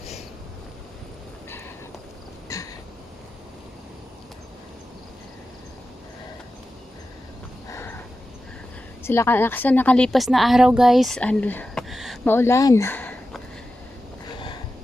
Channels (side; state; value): both; normal; correlation 0.92